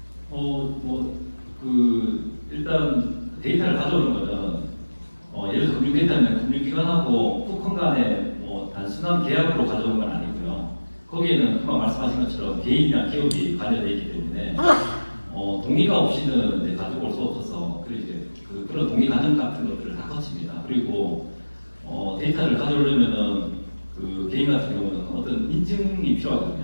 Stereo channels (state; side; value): inverted; both; correlation -1.00